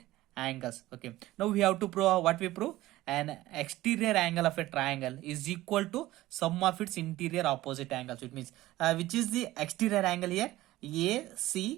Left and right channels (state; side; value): quieter; left; 16.7 dB